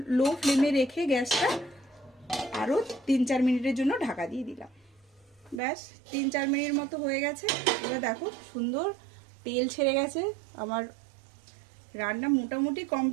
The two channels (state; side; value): drops out; left; at 5.6 s